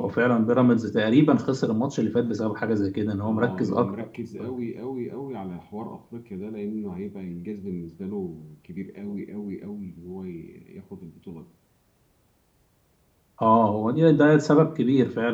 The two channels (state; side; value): identical; both; correlation 1.00